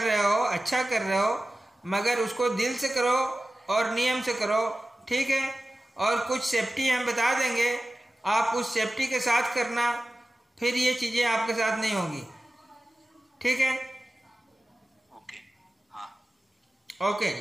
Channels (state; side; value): normal; both; correlation 0.95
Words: हो, अच्छा कर रहे हो, मगर उसको दिल से करो और नियम से करो, ठीक है। और कुछ सेफ्टी हम बता देंगे, आप उस सेफ्टी के साथ करना, फिर ये चीज़ें आपके साथ नहीं होगी, ठीक है। ओके, हाँ, ओके